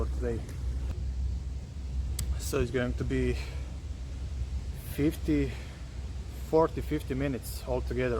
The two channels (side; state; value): both; identical; correlation 1.00